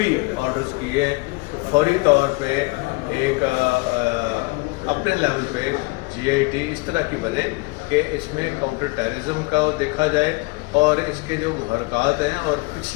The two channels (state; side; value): quieter; right; 25.9 dB